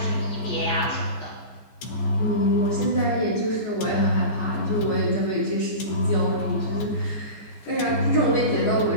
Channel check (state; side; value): late; right; 14 ms